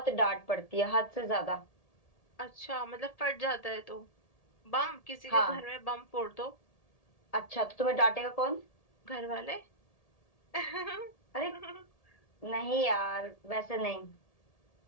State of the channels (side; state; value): right; late; 1.8 ms